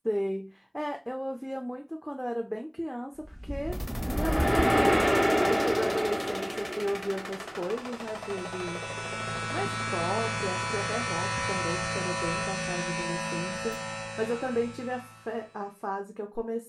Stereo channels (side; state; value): both; identical; correlation 1.00